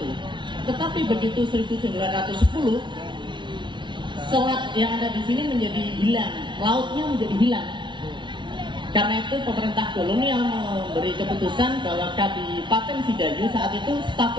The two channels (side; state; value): left; late; 0.23 ms